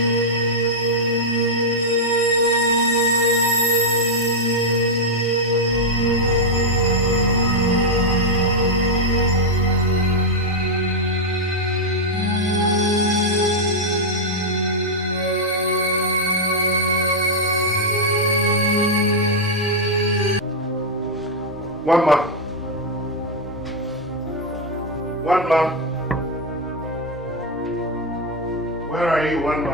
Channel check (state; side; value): normal; both; correlation -0.01